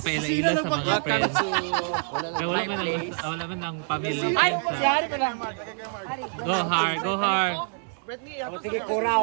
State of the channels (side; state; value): left; silent; 61 dB below the other